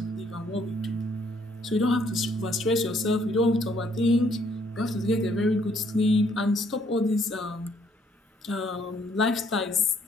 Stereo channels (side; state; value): both; normal; correlation 0.67